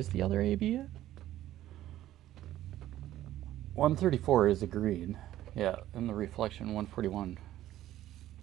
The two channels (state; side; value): quieter; left; 13.6 dB